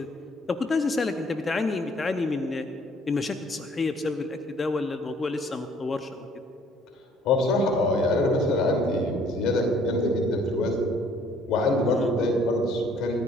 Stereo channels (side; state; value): both; normal; correlation 0.60